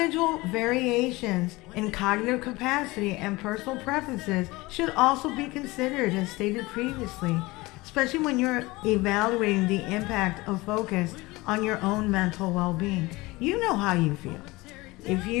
variations in cognitive capacity and personal preferences should also be considered, as stated previously, especially when you're evaluating the impact of focus on your own mental well-being. You know how you feel. If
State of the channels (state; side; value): quieter; right; 21.7 dB